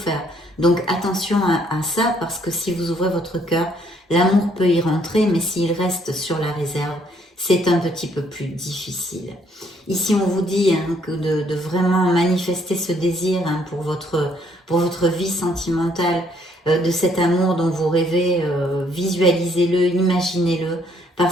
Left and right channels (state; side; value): normal; both; correlation 0.67